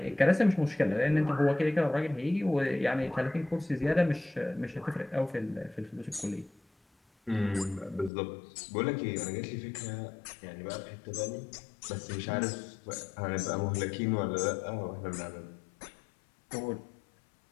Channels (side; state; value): right; drops out; at 8.1 s